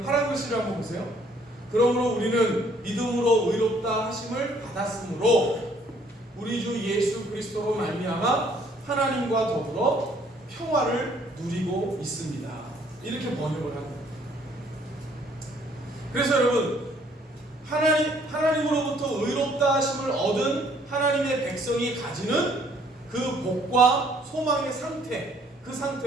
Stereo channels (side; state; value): both; normal; correlation 0.62